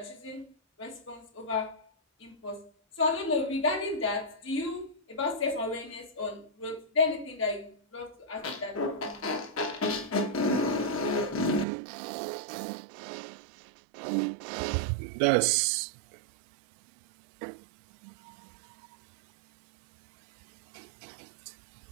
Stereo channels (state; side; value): drops out; left; at 11.7 s